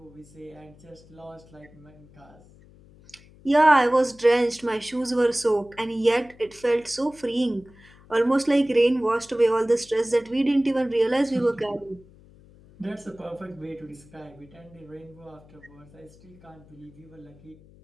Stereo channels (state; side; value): noise; left; hum, 25 dB below the sound